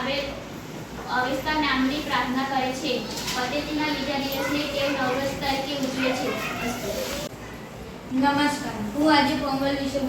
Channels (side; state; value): both; identical; correlation 1.00